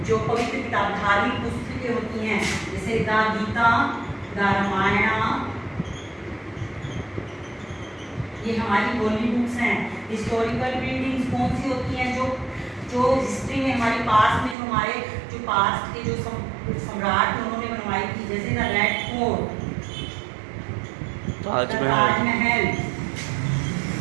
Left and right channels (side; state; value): left; drops out; at 14.6 s